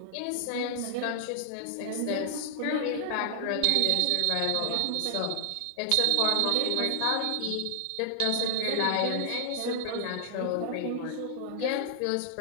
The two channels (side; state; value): both; different; correlation 0.00